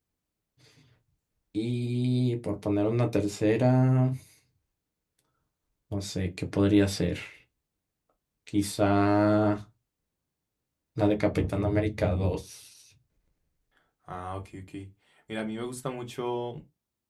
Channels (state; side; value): identical; both; correlation 1.00